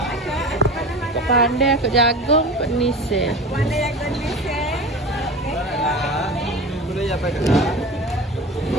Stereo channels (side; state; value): both; normal; correlation 0.32